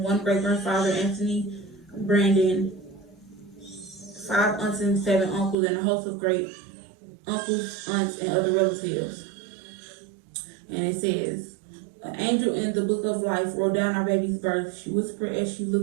great grandfather, Anthony Brandon. 5 aunts and 7 uncles, and a host of great uncles, aunts, and other relatives. And it says, an angel in the book of life wrote down our baby's birth. She whispered as she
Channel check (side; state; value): left; drops out; at 5.6 s